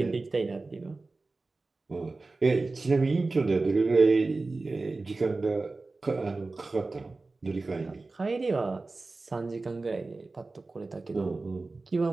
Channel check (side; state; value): left; quieter; 3.5 dB